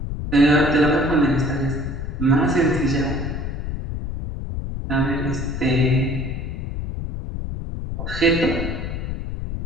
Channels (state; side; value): noise; left; rumble, 5 dB below the sound